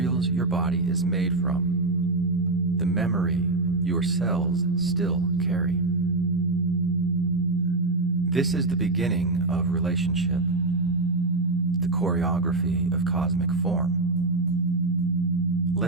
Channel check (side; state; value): left; quieter; 3.2 dB